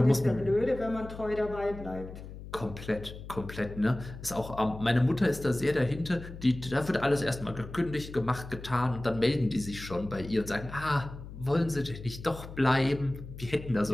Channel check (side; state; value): left; noise; hum, 13 dB below the sound